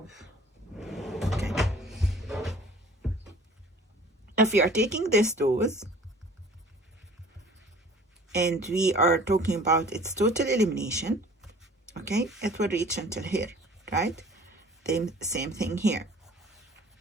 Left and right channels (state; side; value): normal; both; correlation 0.50